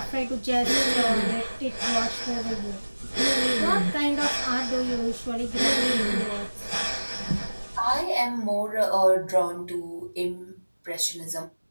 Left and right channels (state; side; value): inverted; both; correlation -1.00